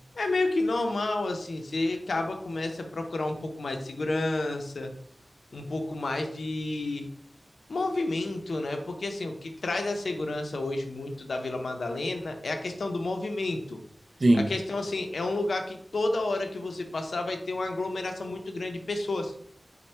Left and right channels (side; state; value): both; normal; correlation 0.95